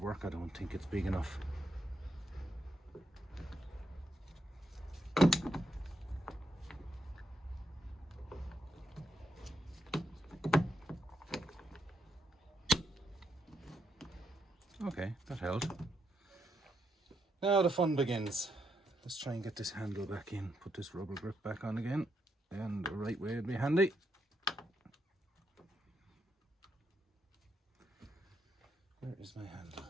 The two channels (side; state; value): both; normal; correlation 0.79